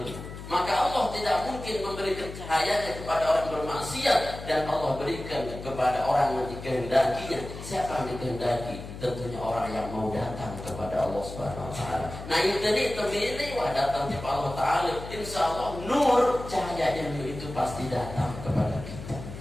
Maka Allah tidak mungkin memberikan cahayanya kepada orang bermaksiat, dan Allah berikan kepada orang yang dikehendakinya. Siapa yang dikehendaki? Tentunya orang yang mau datang kepada Allah Subhanahu wa taala. Nah, itu terpilih wah datang kepada Allah taala. Insyaallah nur cahayanya itu pasti datang kepada kita.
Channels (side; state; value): left; noise; hum, 11 dB below the sound